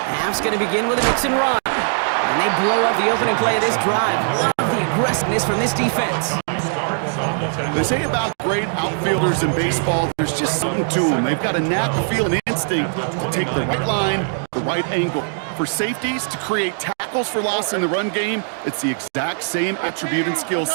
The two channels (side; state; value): left; silent; digital silence